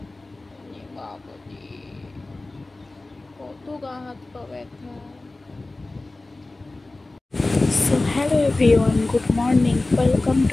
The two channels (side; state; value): right; quieter; 3.0 dB